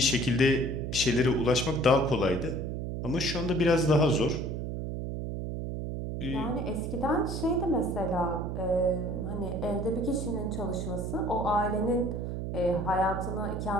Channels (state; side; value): noise; right; hum, 4 dB below the sound